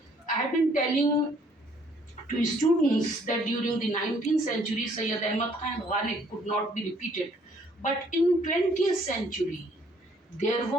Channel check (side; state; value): both; normal; correlation 0.63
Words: I have been telling to students that during the 19th century, Syed Ahmad Khan and Ghalib could not be repeated. But in 20th century, there